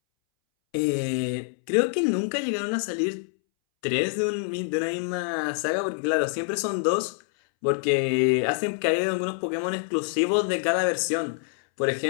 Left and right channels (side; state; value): right; silent; 61 dB below the other